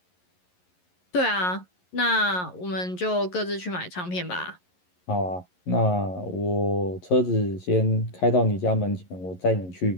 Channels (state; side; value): late; right; 11 ms